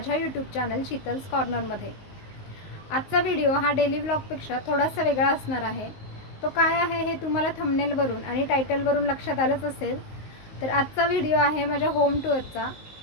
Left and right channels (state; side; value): late; right; 19 ms